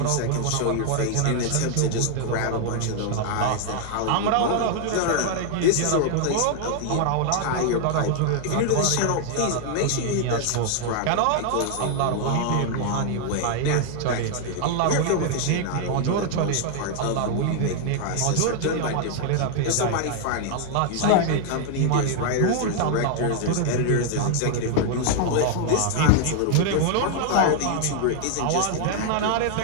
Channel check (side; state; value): both; different; correlation 0.00